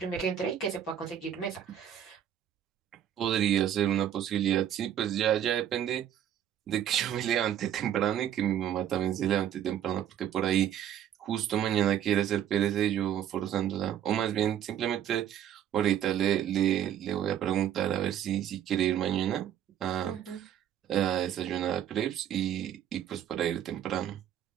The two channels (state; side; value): quieter; left; 10.3 dB